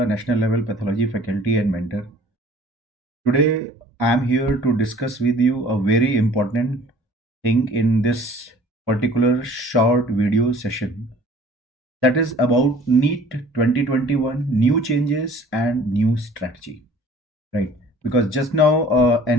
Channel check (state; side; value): normal; both; correlation 0.50